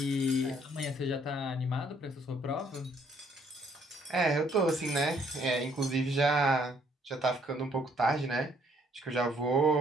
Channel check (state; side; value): normal; both; correlation 0.66